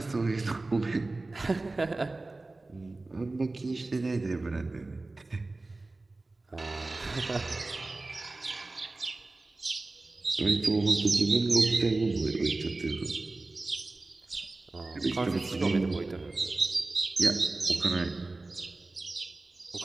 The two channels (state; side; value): quieter; left; 3.2 dB